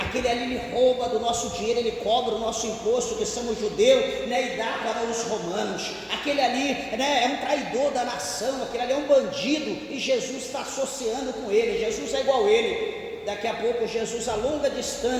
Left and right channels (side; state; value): both; identical; correlation 1.00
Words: ali ele rouba do nosso dinheiro, ele cobra o nosso imposto, que somos judeus, né, e dá para os romanos. Aquele ali, né, é um traidor da nação, aquele ali é um bandido, e Jesus está associando com ele. Jesus é igual a ele. Daqui a pouco Jesus, a longa